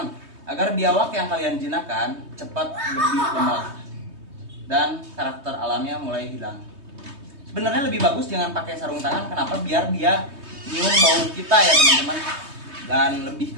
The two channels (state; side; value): late; left; 3.2 ms